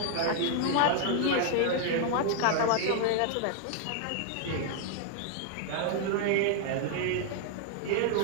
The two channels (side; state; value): both; different; correlation 0.00